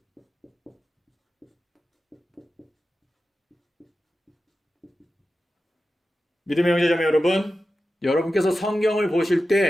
믿음의 형제자매 여러분, 여러분께서 성경을 보실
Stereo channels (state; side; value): normal; both; correlation 0.93